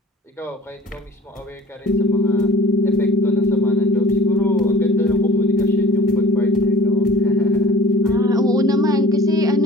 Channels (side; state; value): both; normal; correlation 0.47